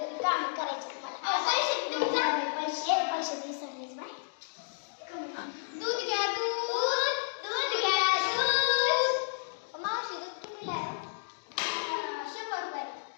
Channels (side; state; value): right; silent; digital silence